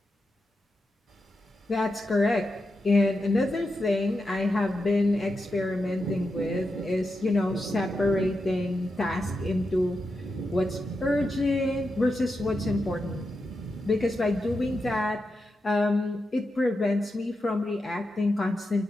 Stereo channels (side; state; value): both; normal; correlation 0.88